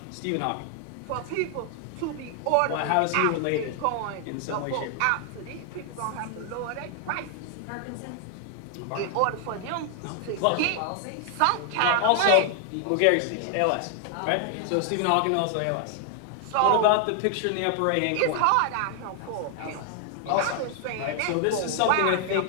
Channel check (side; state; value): both; different; correlation 0.00